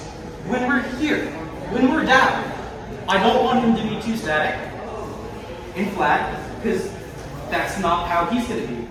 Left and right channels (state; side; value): identical; both; correlation 1.00